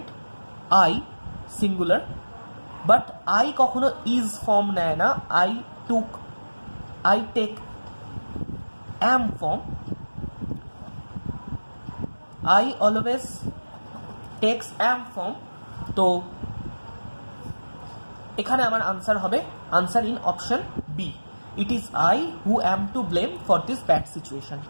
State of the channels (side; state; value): both; inverted; correlation -1.00